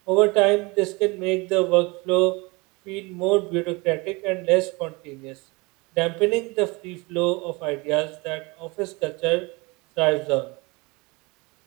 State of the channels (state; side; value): quieter; left; 26.2 dB